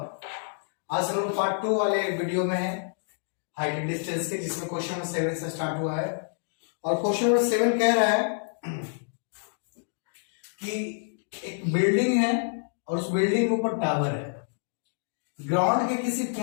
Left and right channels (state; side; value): silent; right; digital silence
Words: हम लोग पार्ट 2 वाले वीडियो में है हाइट एंड डिस्टेंस के, जिसमें क्वेश्चन नंबर 7 से स्टार्ट हुआ है। और क्वेश्चन नंबर 7 कह रहा है कि एक बिल्डिंग है और उस बिल्डिंग के ऊपर टावर है। ग्राउंड के किसी